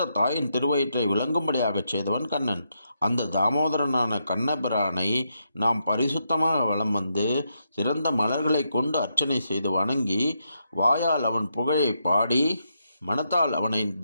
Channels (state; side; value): inverted; both; correlation -0.81